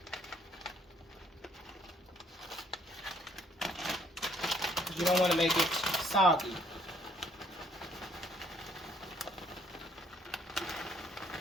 You don't want to make it soggy.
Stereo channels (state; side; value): normal; both; correlation 0.64